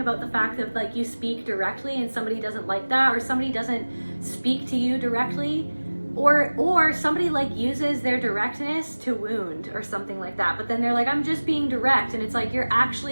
about the fact that like you speak directly and somebody doesn't like that, or somebody doesn't speak to you directly, or somebody like uses their directness to wound or something like that. But then they're like, I'm just being direct, and it's like you're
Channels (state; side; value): inverted; both; correlation -1.00